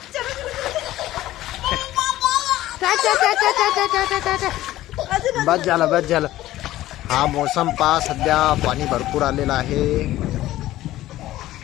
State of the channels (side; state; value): right; quieter; 15.2 dB